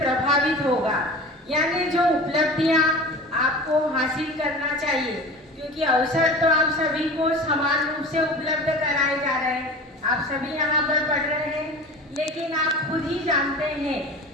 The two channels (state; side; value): normal; both; correlation 0.36